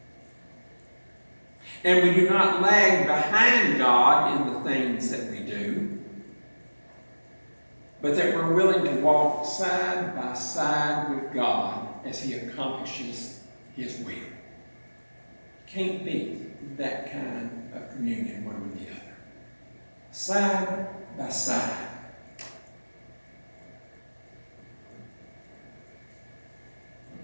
and we do not lag behind God in the things that we do, but that we're willing to walk side by side with God as He accomplishes His will. Can't beat that kind of communion one with the other. Side by side.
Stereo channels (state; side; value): inverted; both; correlation -1.00